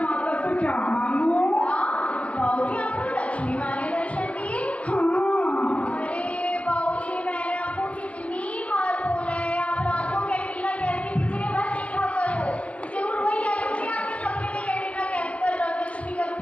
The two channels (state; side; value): late; right; 0.066 ms